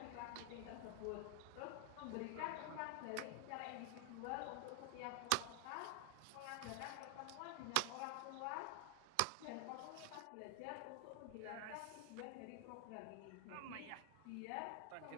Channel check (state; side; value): different; both; correlation 0.00